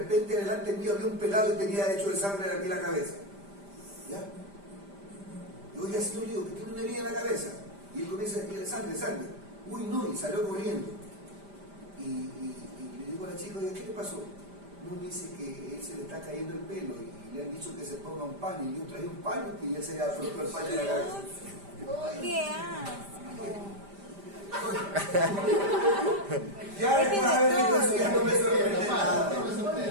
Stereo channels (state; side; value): late; left; 5.0 ms